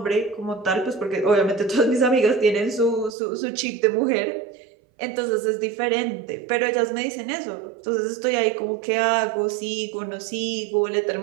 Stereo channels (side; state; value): left; drops out; at 3.1 s